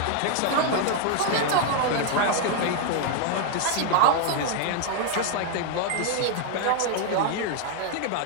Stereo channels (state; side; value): different; both; correlation 0.00